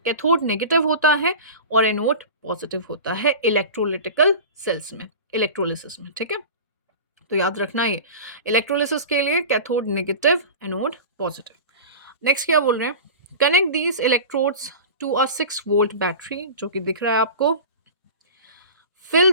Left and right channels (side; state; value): both; inverted; correlation -0.32